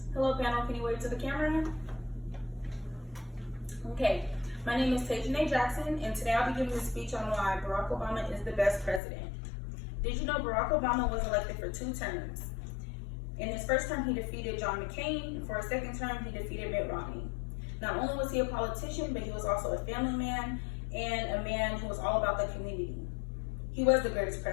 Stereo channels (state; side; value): drops out; right; at 9.0 s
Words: Hello panel, can you wave to the camera? Okay, my name is Tajane Jackson, and today I'll be giving a speech on why Barack Obama is the best president. Did you know Barack Obama was elected for 2 terms? In his first term, he defeated John McCain, and for his second term, he defeated Mitt Romney. Not only was he a politician, but he was also a family man and a man who was all about the community. He was the greatest